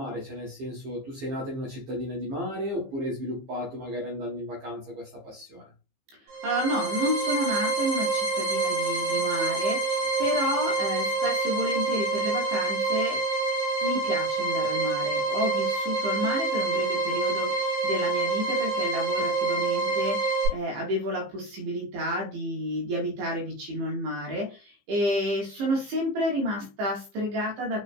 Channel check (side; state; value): left; late; 15 ms